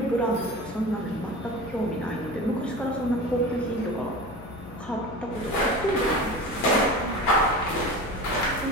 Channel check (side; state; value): left; noise; hum, 17 dB below the sound